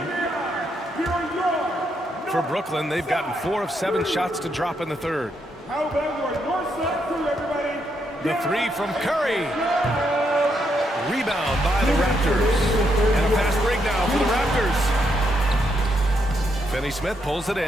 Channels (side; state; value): both; normal; correlation 0.78